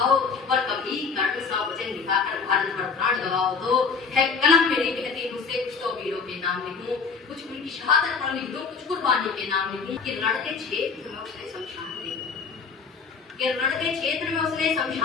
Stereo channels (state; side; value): quieter; right; 5.3 dB